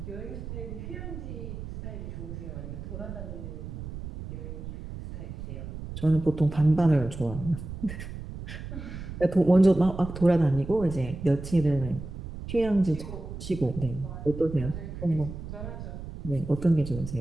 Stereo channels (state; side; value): noise; right; rumble, 9 dB below the sound